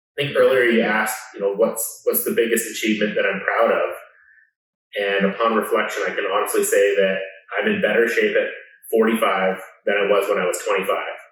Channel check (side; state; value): both; identical; correlation 1.00